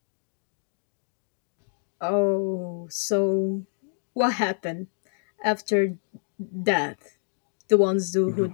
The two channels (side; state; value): right; silent; digital silence